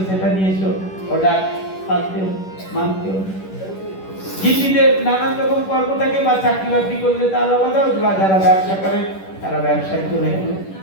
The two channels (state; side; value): late; right; 10 ms